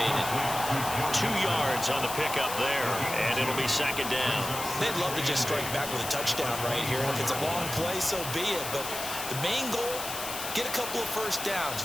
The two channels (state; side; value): noise; left; hiss, 6 dB below the sound